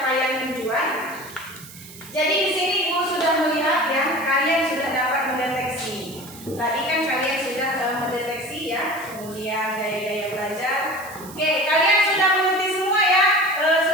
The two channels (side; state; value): right; noise; hiss, 17 dB below the sound